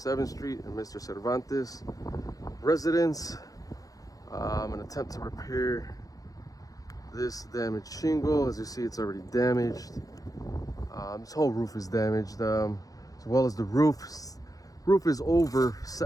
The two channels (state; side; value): late; right; 0.17 ms